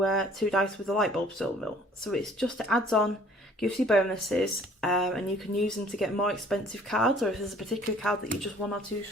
dice with the light bulb symbol. So it's just, it adds on, gives you bonuses, and you can use them to get more expensive cards, or if there's a particular card that you're just 1 or 2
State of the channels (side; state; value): both; normal; correlation 0.55